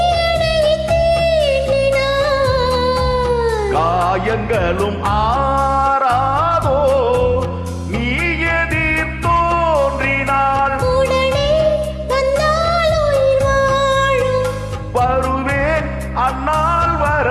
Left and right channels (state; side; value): identical; both; correlation 1.00